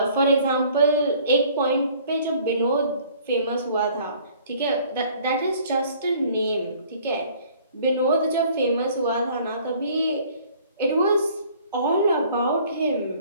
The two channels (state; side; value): inverted; both; correlation -0.55